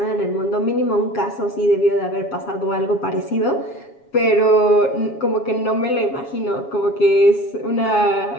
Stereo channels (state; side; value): late; right; 7.2 ms